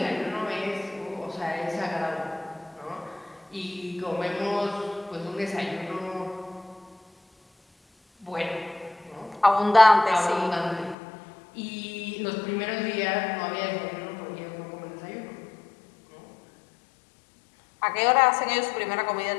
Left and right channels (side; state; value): right; drops out; at 11.0 s